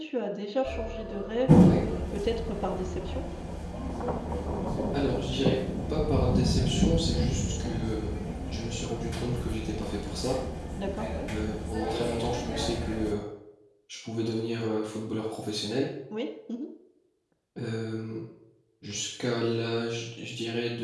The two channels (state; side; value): identical; both; correlation 1.00